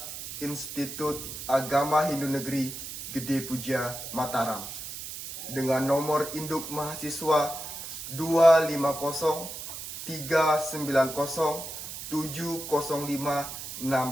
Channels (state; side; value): noise; right; hiss, 9 dB below the sound